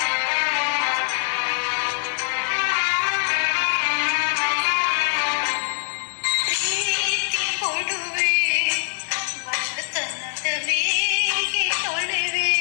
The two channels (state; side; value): silent; right; digital silence